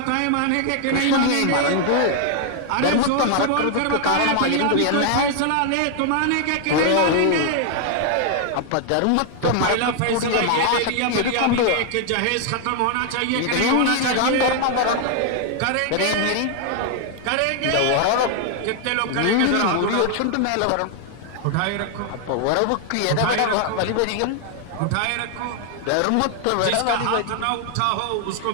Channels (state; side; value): different; both; correlation 0.00